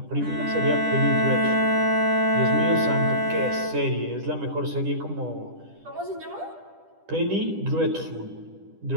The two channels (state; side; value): late; left; 10 ms